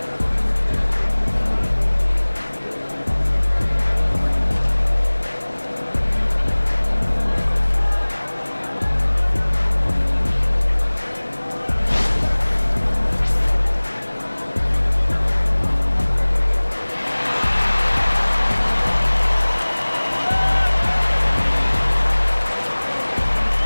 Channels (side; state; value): both; inverted; correlation -1.00